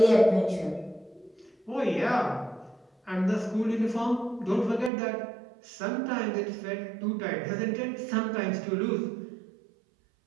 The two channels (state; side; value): drops out; left; at 4.9 s